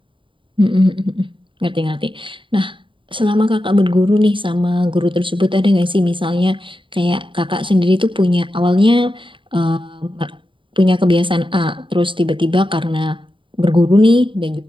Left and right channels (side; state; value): left; late; 0.25 ms